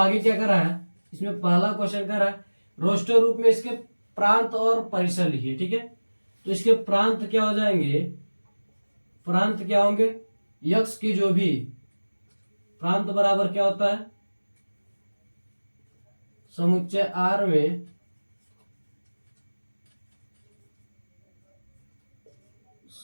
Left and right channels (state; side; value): inverted; both; correlation -1.00